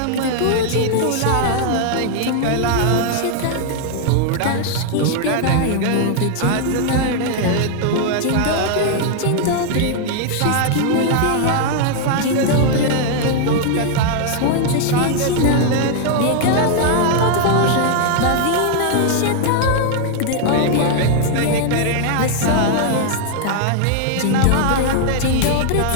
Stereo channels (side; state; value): both; different; correlation 0.00